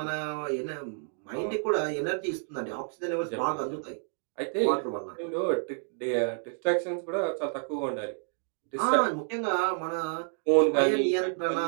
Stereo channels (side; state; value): left; silent; 58 dB below the other